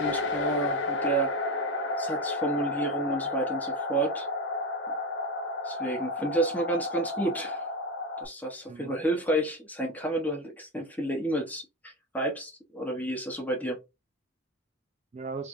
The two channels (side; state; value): both; normal; correlation 0.17